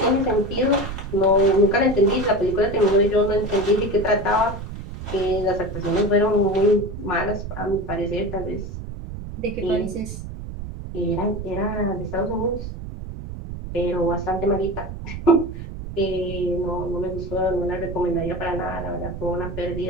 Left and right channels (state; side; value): noise; right; rumble, 9 dB below the sound